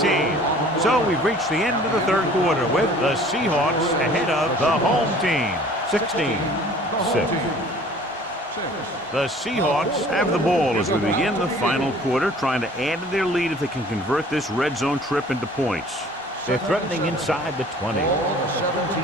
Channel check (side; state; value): both; normal; correlation 0.50